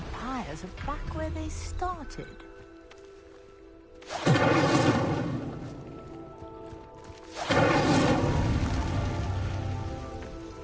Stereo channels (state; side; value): identical; both; correlation 1.00